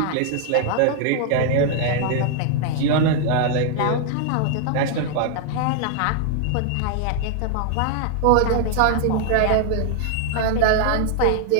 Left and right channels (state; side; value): different; both; correlation 0.00